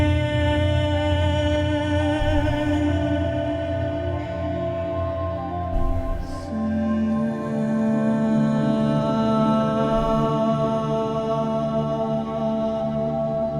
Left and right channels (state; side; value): identical; both; correlation 1.00